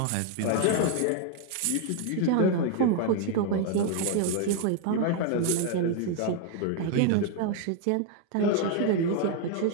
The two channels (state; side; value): different; both; correlation 0.00